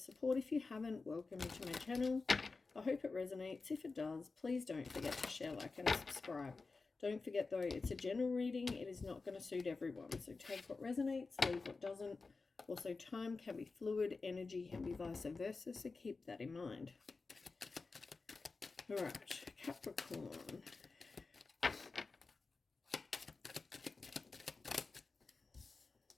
If you haven't, welcome to my channel. I hope it resonates. If it does, please don't forget to share, like and subscribe. Don't forget though, it's a general reading. It is not going to suit everyone. So take what resonates, leave what doesn't. Also, time can be fluid, energy can be vice versa, so keep that in mind. All right, Capricorn.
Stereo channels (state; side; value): quieter; right; 4.1 dB